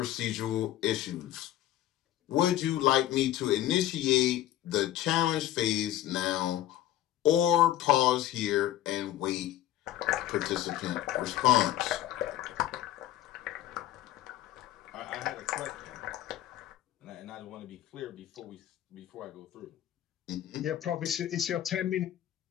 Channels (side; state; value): right; quieter; 13.1 dB